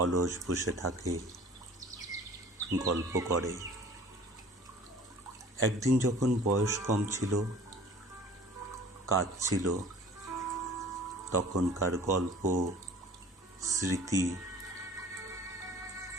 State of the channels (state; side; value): normal; both; correlation 0.47